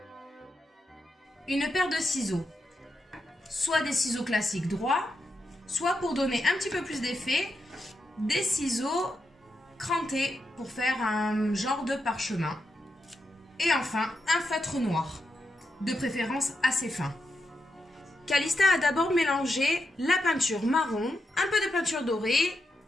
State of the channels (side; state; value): both; normal; correlation 0.85